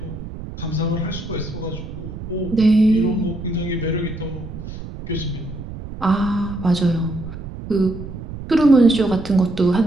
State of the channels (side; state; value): right; noise; rumble, 10 dB below the sound